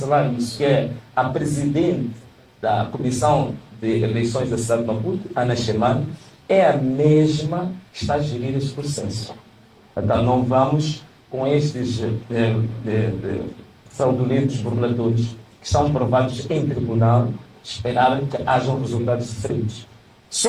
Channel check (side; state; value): both; identical; correlation 1.00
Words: isso, que é a presidente da Comissão de Eleições da cidade de Maputo, Ana Chemane, é a mesma que está a gerir este processo. Então não vamos com estes fraudulentos burladores que estão provados em tribunal esperar que hajam resultados diferentes.